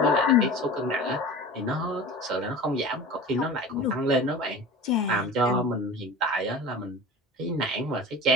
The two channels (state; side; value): normal; both; correlation 0.35